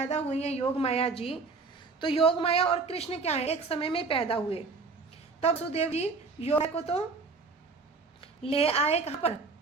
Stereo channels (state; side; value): quieter; left; 4.3 dB